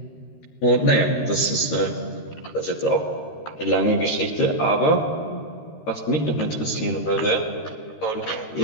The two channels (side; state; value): right; late; 13 ms